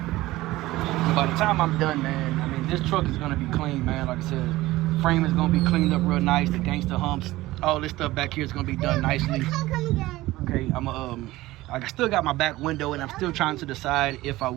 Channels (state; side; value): quieter; left; 17.8 dB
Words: by the time I'm done, man, I mean, this truck is gonna be clean, man. Like I said, frame is gonna be cleaned up real nice. The gangster humps, all this stuff back here is gonna be done nicely. Okay, I still got my back window, and I'm still trying to decide if I